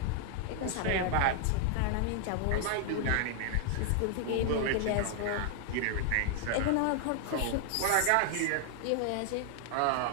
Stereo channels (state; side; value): different; both; correlation 0.00